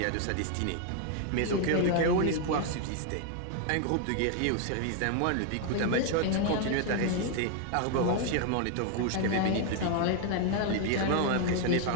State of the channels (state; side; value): different; both; correlation 0.00